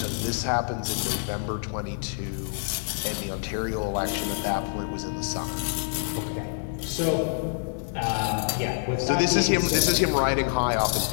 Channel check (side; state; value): right; silent; digital silence